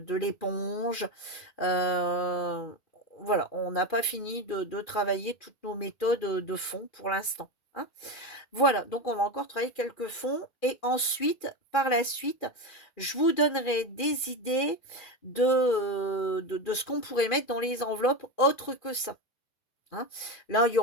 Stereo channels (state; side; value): late; right; 2.4 ms